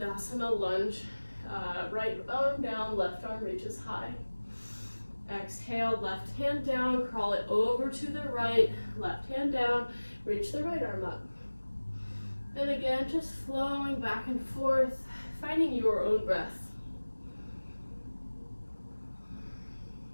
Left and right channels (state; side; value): inverted; both; correlation -1.00